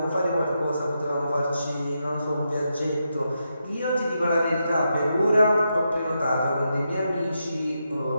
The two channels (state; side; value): inverted; both; correlation -0.84